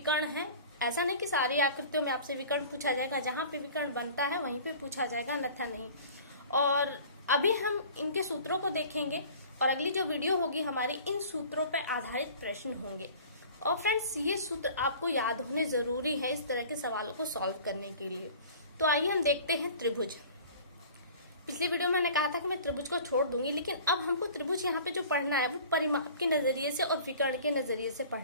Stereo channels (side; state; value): both; inverted; correlation -0.45